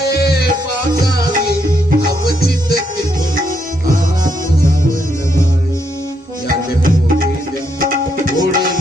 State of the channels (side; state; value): both; normal; correlation 0.77